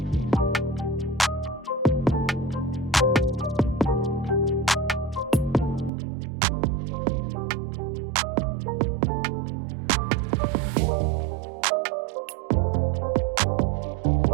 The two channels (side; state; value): left; drops out; at 5.9 s